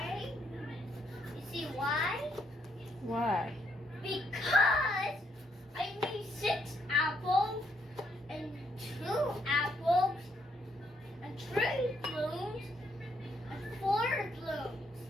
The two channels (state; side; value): normal; both; correlation 0.72